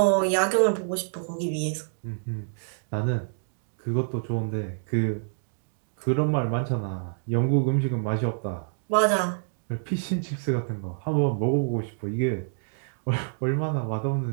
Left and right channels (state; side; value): silent; left; digital silence